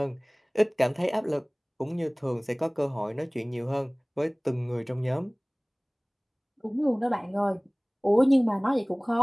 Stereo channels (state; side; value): identical; both; correlation 1.00